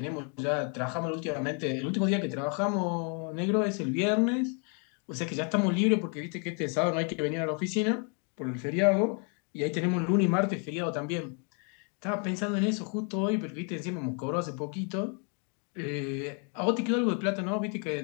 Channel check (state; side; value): quieter; right; 39.0 dB